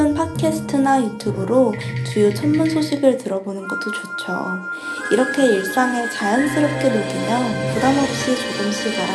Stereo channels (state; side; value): identical; both; correlation 1.00